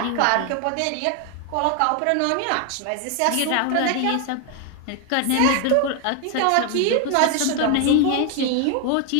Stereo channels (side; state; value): both; different; correlation 0.01